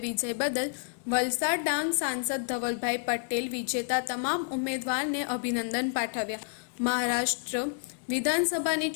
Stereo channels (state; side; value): silent; right; digital silence